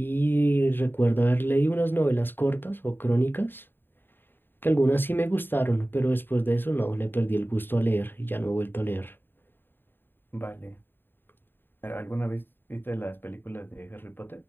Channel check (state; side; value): late; right; 0.097 ms